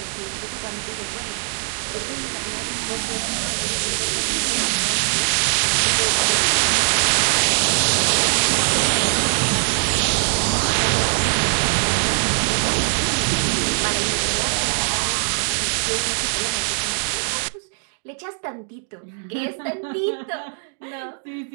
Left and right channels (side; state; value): left; silent; digital silence